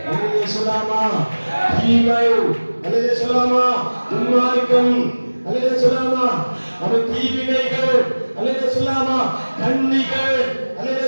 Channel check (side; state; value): both; inverted; correlation -1.00